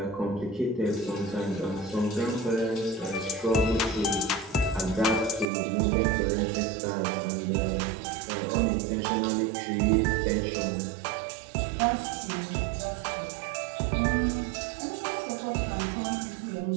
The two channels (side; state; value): left; drops out; at 5.5 s